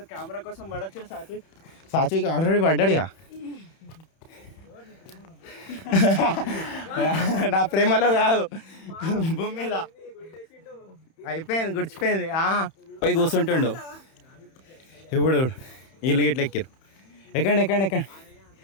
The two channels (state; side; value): late; right; 31 ms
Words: కెమెరా కోసం పడొచ్చు. సాత్విక్ ఆల్రెడీ పడ్డాడుగా. నా ప్రేమలో కాదు, భూమి మీద అయిపోయింది, గుడిచిపోయింది. పోయి కూర్చుంటుండు. ఇప్పుడు వీళ్ళు గిట్ల ఎక్కిరు. ఎక్కండి.